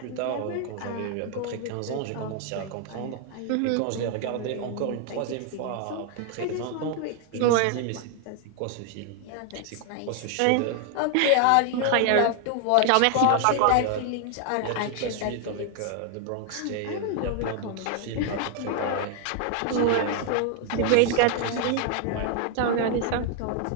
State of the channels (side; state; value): both; different; correlation 0.00